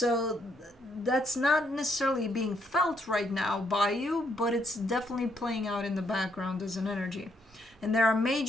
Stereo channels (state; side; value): normal; both; correlation 0.73